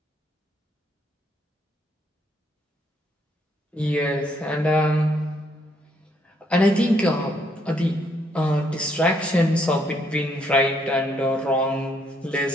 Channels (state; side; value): normal; both; correlation 0.71